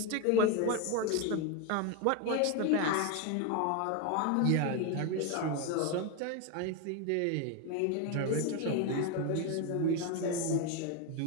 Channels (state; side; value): different; both; correlation 0.02